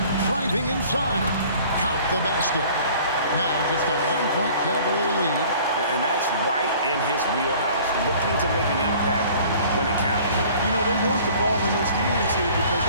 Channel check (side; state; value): both; inverted; correlation -0.50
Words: driving inside. Count the basket. Now just a 1-point Cavalier lead. And that's right in his wheelhouse, looking to make an impact when it counts. You know, they want the ball in his hands here because